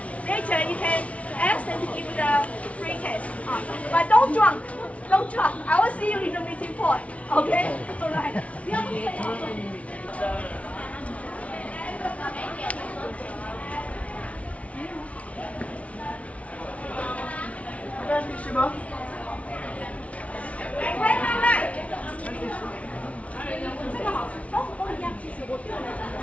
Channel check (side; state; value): right; late; 0.065 ms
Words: later you can ask them to give you the free taste. But don't drunk. Don't drunk. I will see you in the meeting point. Okay? Alright. 不要醉哦。来，这个好吃，都一样。其实我